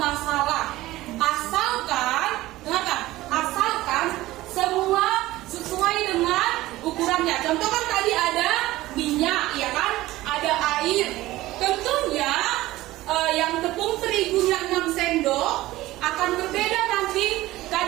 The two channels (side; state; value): left; quieter; 17.1 dB